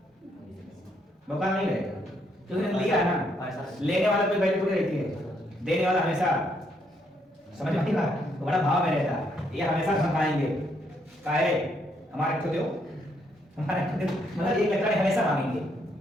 भौकाल नहीं रहेगा, तो इन्होंने लिया है ना, लेने वाला कोई वैल्यू थोड़ी रहती है, देने वाला हमेशा, समझ में आएगा, बड़ा भाव में रहता है, ये हमेशा धमकाएंगे, काहे हमारे को दो, हमारे मतलब एक लकड़ हमेशा मांगेंगे,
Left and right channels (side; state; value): both; normal; correlation 0.73